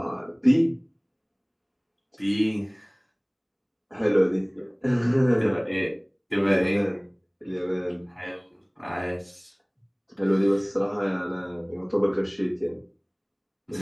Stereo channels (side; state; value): both; identical; correlation 1.00